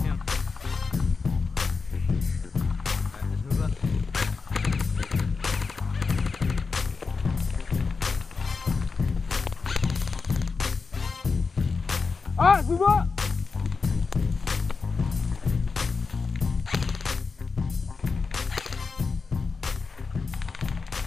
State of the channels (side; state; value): right; quieter; 4.7 dB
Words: Alright, let's move up. Alright, move up!